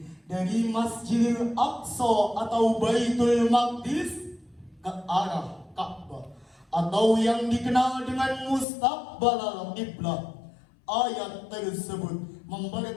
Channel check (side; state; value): right; drops out; at 8.7 s